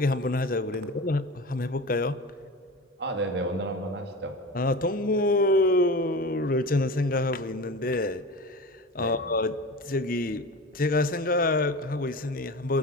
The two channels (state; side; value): normal; both; correlation 0.32